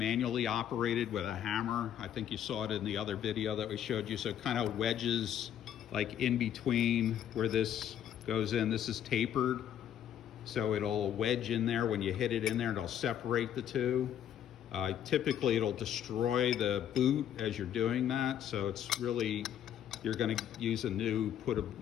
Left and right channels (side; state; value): right; quieter; 10.1 dB